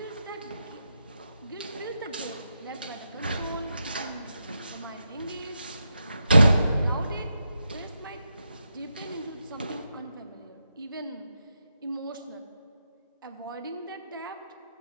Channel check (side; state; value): both; inverted; correlation -0.85